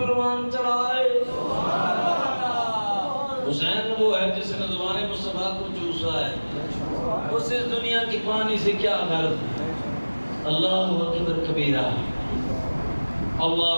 چڑھائے، حسین وہ ہے جس نے زبان مصطفیٰ کو چوسا ہے، اس دنیا کی پانی سے کیا غرض۔ اللہ اکبر کبیرہ،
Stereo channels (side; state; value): both; inverted; correlation -1.00